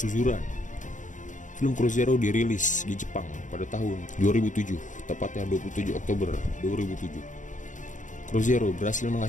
Film Crow Zero dirilis di Jepang pada tahun 2007, tepatnya 27 Oktober 2007. Crow Zero berhasil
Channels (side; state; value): right; late; 0.37 ms